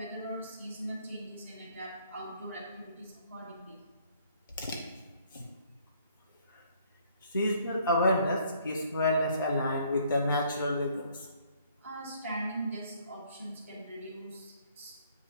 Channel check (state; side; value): inverted; both; correlation -0.63